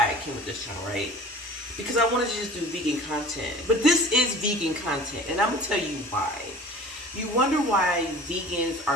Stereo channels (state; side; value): normal; both; correlation 0.43